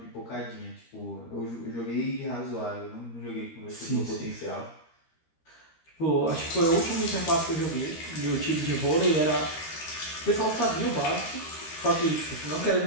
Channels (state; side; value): late; right; 13 ms